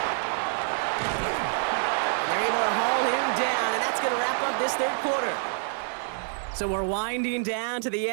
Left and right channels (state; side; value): silent; left; 60 dB below the other